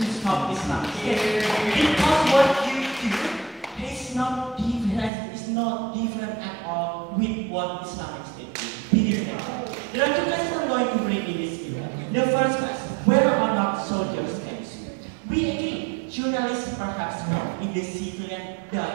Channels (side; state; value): left; drops out; at 5.1 s